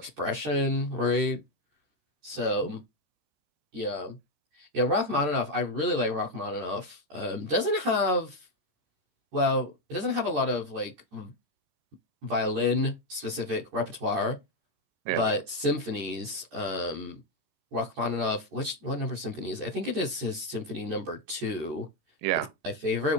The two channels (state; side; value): late; left; 13 ms